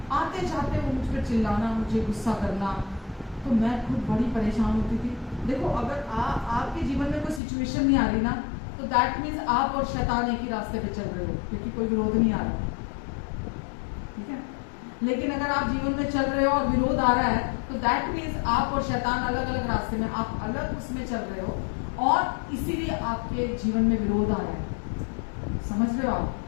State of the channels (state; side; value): drops out; right; at 7.4 s